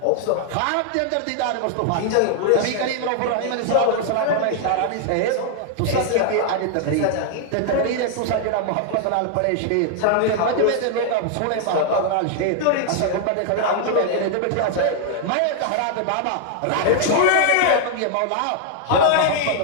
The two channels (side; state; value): both; different; correlation 0.00